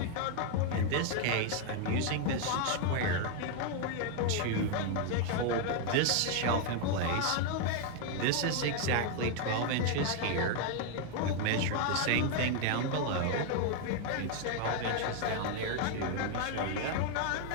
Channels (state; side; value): different; both; correlation 0.01